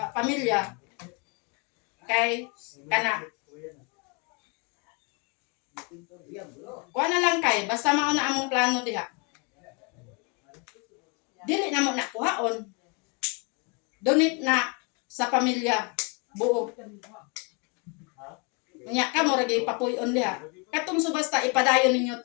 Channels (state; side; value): quieter; right; 33.2 dB